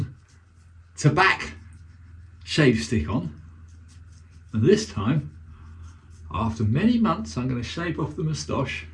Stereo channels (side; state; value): both; identical; correlation 1.00